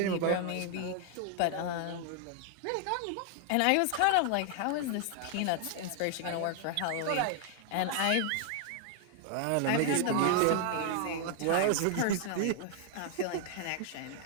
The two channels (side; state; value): both; different; correlation 0.00